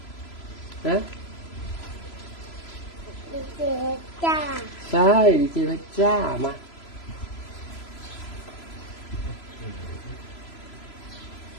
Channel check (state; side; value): late; right; 3.0 ms